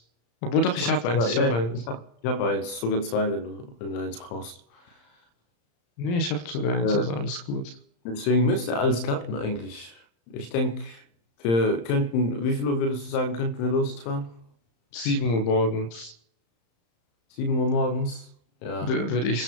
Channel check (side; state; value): right; late; 35 ms